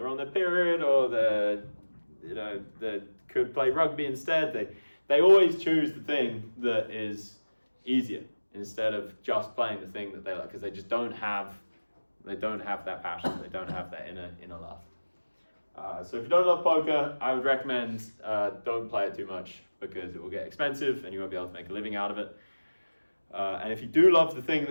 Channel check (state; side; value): inverted; both; correlation -1.00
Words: on their period, or they could play rugby instead. They always choose the thing that is easier instead of just playing the thing that they like, because they just don't have that passion. They don't have that inner love. So if you don't love poker, I would recommend don't play it too much, because it will get expensive and you won't be able to make a living out of it. And if you do love the thing